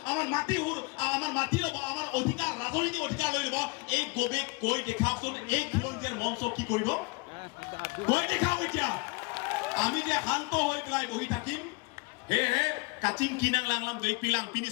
আমাৰ মাটি ল'ব আমাৰ অধিকাৰ ৰাজনৈতিক অধিকাৰ লৈ ল'ব এই গৌৰৱ কৈ দেখাওকচোন এই খিলঞ্জীয়াৰ মঞ্চ কি কৰিব কৈ দেখাও এতিয়া আমি যে শান্ত হৈ পেলাই বহি থাকিম হে কাচিং কিনাং লাংলাম গৈ পিলাং পিনি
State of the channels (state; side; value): quieter; right; 29.0 dB